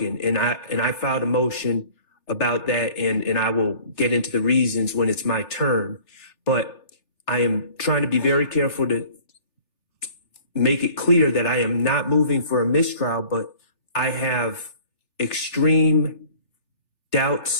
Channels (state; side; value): late; right; 3.4 ms